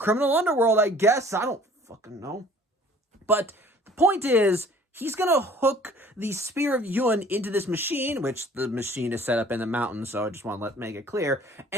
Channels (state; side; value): normal; both; correlation 0.52